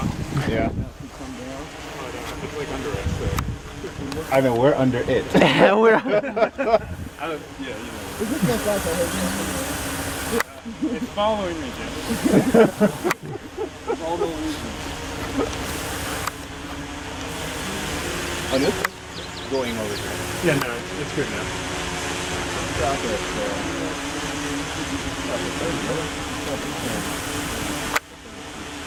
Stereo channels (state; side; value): identical; both; correlation 1.00